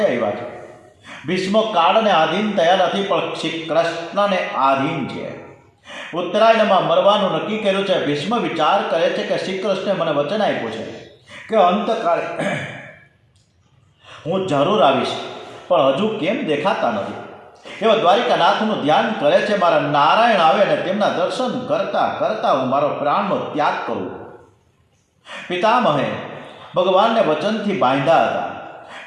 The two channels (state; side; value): identical; both; correlation 1.00